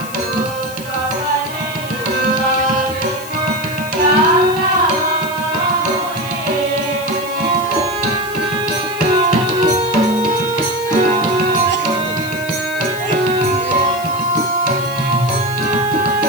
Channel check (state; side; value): noise; left; hiss, 15 dB below the sound